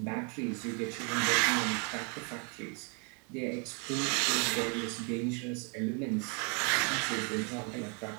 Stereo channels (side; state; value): left; quieter; 36.5 dB